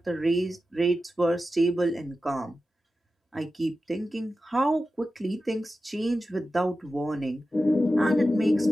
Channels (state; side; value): normal; both; correlation 0.93